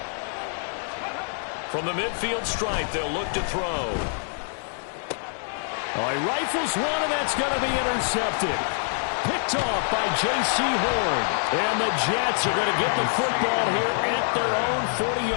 From the midfield stripe, they'll look to throw. Oh, he rifles one, and that's going to be intercepted. Picked off by J.C. Horn. And the Jets are going to get the football here at their own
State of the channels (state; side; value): silent; right; digital silence